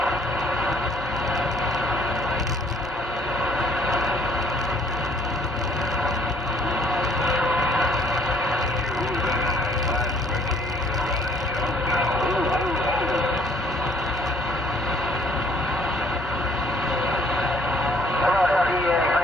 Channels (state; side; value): normal; both; correlation 0.61